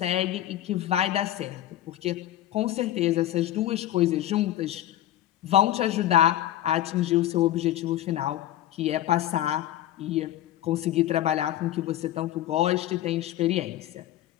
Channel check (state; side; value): quieter; right; 13.1 dB